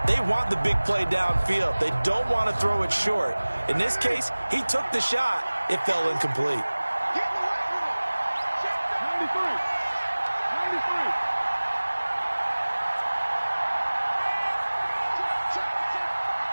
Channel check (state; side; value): inverted; both; correlation -1.00